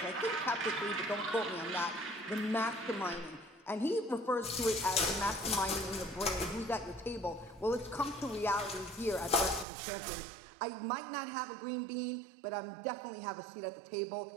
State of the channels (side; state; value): left; drops out; at 9.7 s